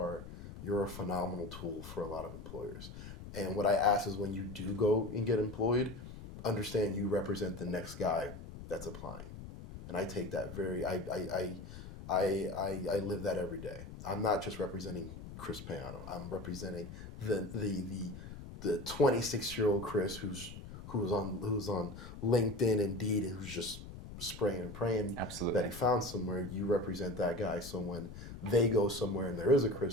a phenomenal tool for a lot of employers. And what I ask is, when you do go and get employed, understand you represent the next guy that's applying. And I take that I live that every day. I'm not just representing Chris Payano. I'm representing the 26-year-old Chris who's on LinkedIn, Indeed, and who's just spraying and praying that he found somewhere. You represent that guy, so when they go somewhere and there is a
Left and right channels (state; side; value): noise; left; rumble, 12 dB below the sound